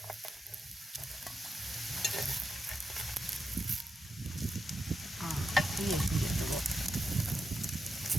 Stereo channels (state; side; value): normal; both; correlation 0.87